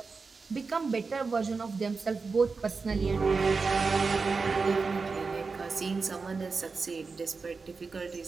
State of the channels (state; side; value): quieter; left; 4.5 dB